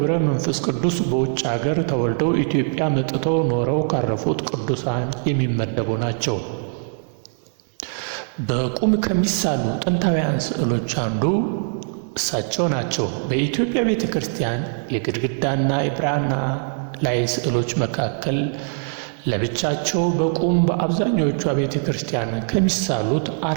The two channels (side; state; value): left; silent; digital silence